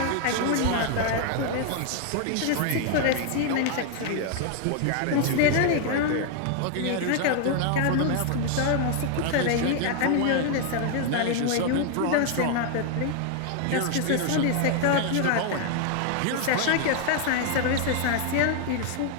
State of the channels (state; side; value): different; both; correlation 0.00